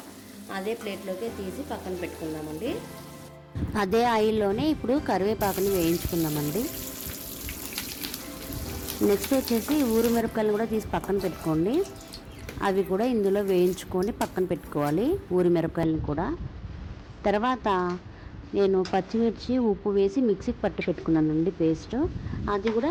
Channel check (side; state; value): both; identical; correlation 1.00